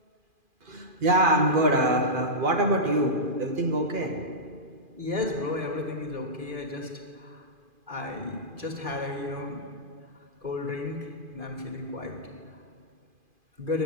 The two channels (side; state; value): left; late; 2.5 ms